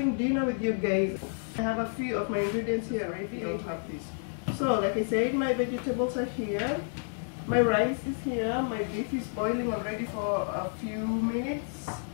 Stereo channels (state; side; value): silent; right; 57 dB below the other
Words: dinner with you guys. I have a few of my ingredients here already. I have this. So like I said, my vegetables are here. My rice is here. My beef is boiling already for a few minutes.